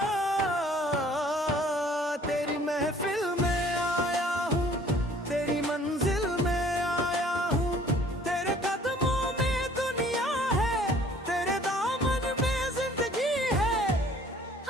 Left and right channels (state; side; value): normal; both; correlation 0.55